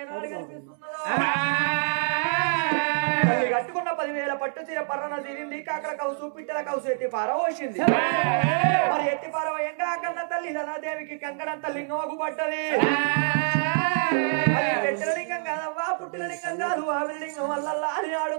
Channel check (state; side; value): silent; left; digital silence